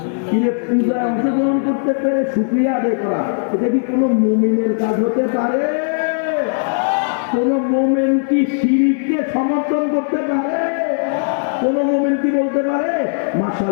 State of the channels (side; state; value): right; silent; 63 dB below the other